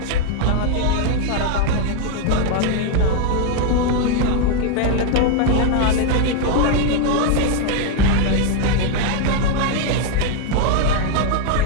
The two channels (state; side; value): different; both; correlation 0.00